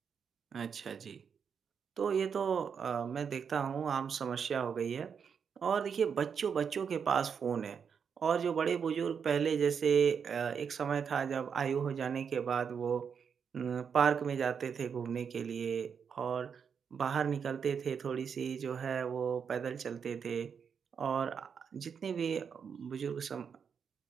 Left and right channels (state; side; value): quieter; left; 6.8 dB